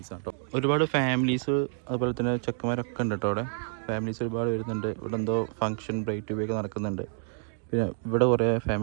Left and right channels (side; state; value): left; silent; 59 dB below the other